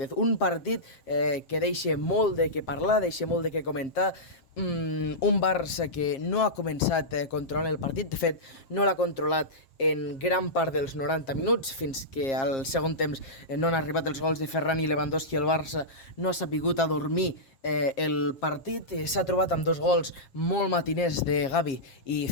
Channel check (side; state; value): right; late; 7.5 ms